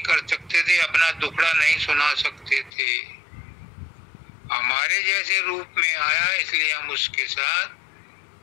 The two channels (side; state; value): right; drops out; at 2.7 s